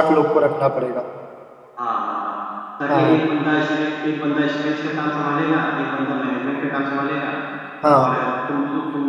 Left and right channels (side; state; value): both; identical; correlation 1.00